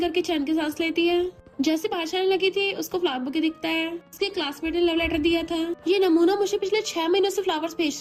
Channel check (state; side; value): identical; both; correlation 1.00